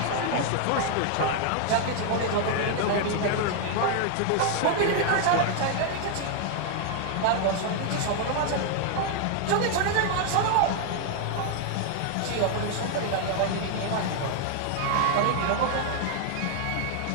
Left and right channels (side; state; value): both; different; correlation 0.00